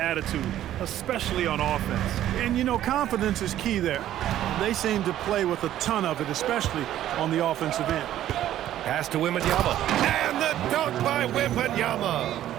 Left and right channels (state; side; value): quieter; left; 12.4 dB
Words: especially on offense. And, you know, confidence is key there. They seem to play with a ton of it, especially on the offensive end. Pass to Wembanyama. And the dunk by